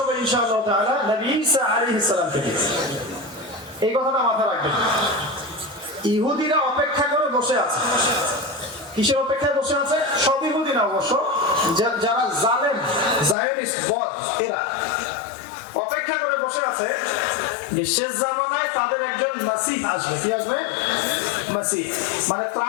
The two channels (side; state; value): right; drops out; at 13.4 s